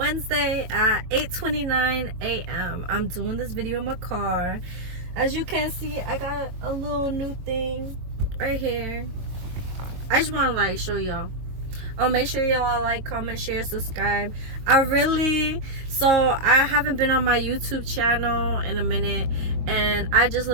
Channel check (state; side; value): late; left; 22 ms